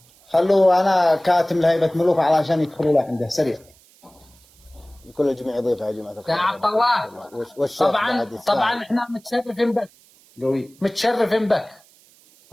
خلوا أنا كاتم لهيبة ملوك علشان يدخلوا له عنده سريع. كل الجميع يضيف يا جماعة الخير. يا عبد الله طبعا احنا متشرفين بك. قوي. متشرفين بك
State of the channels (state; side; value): noise; right; hiss, 29 dB below the sound